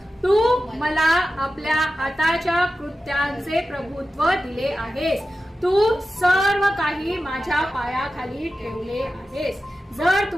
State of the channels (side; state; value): both; normal; correlation 0.93